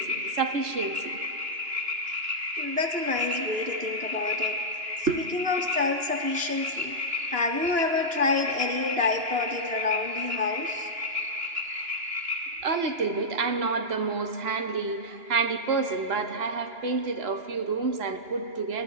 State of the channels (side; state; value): left; late; 2.9 ms